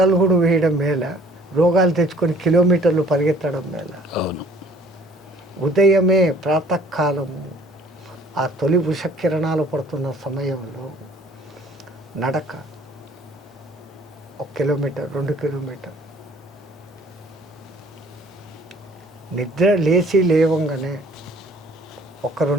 అడుగులు వేయడం మేల, రోగాలు తెచ్చుకొని కిలోమీటర్లు పరిగెత్తడం మేల. అవును. ఉదయమే ప్రాతకాలము ఆ తొలి ఉషకిరణాలు పడుతున్న సమయంలో నడక 1 కిలోమీటర్ 2 కిలోమీటర్. నిద్ర లేవంగానే ఒక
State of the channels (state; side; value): normal; both; correlation 0.55